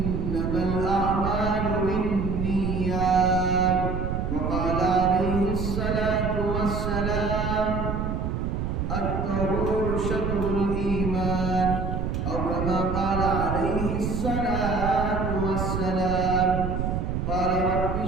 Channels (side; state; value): right; noise; rumble, 1 dB below the sound